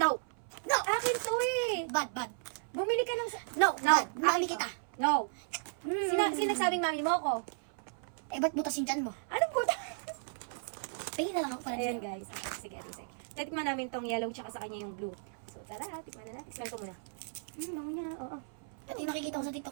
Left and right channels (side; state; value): left; silent; 55 dB below the other